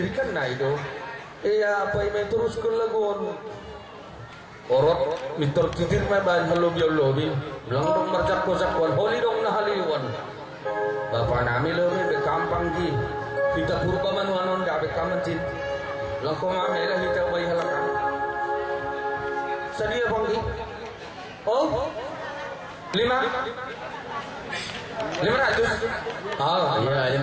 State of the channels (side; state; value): both; identical; correlation 1.00